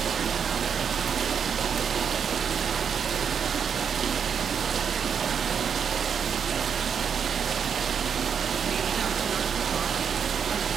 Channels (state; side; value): quieter; left; 7.1 dB